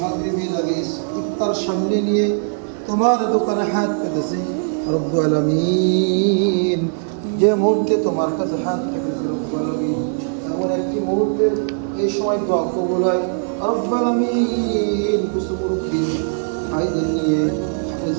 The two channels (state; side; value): silent; left; digital silence